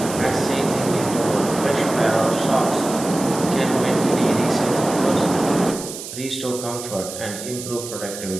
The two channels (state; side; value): noise; right; hiss, 10 dB below the sound